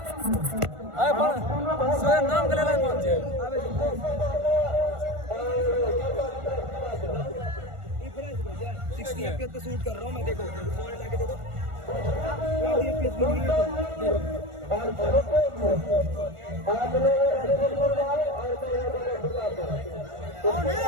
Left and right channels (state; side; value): late; left; 1.4 ms